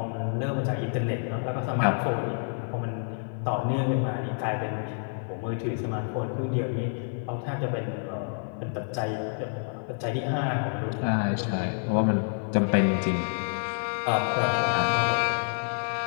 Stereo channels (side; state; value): right; silent; 59 dB below the other